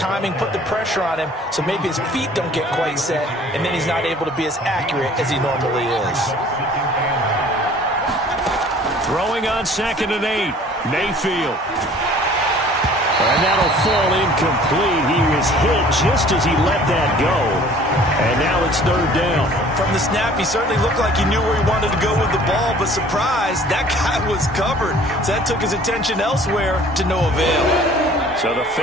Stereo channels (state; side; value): normal; both; correlation 0.51